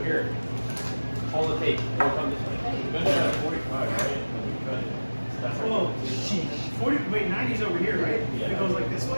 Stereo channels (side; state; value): both; inverted; correlation -1.00